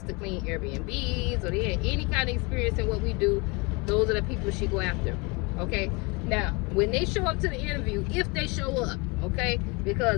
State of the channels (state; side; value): quieter; right; 28.0 dB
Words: to clean Airbnbs, or they had any kind of experience in what we do, those are the people she go after. Okay, now when they show up to the interview, if they show up, okay,